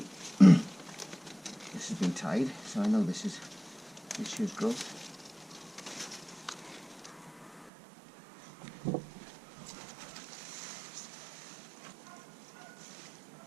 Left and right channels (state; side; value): drops out; left; at 7.7 s